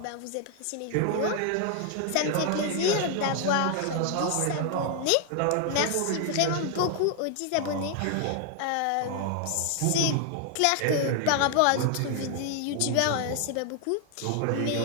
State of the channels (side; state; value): both; different; correlation 0.00